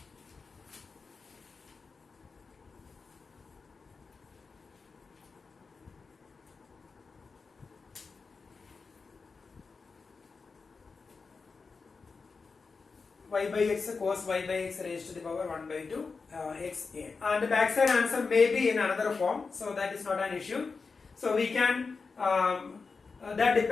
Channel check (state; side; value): quieter; right; 4.7 dB